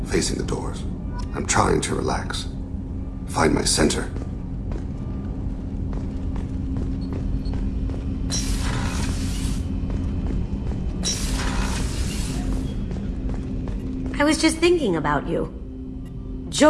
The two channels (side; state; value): both; identical; correlation 1.00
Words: facing the doors. I'm trying to relax. Find my center. I was just thinking about you.